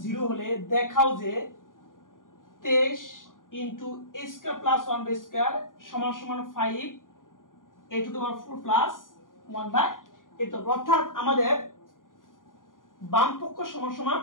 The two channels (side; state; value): right; late; 0.89 ms